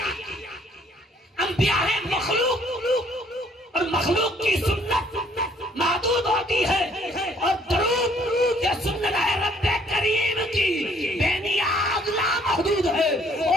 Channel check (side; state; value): both; normal; correlation 0.62